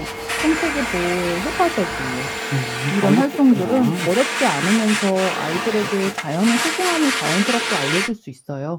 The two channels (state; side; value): identical; both; correlation 1.00